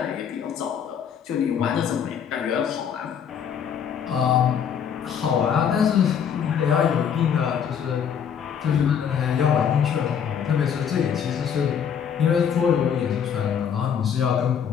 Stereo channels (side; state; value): right; quieter; 7.9 dB